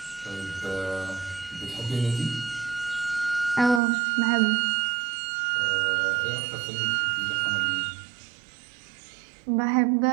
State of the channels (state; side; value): drops out; left; at 3.8 s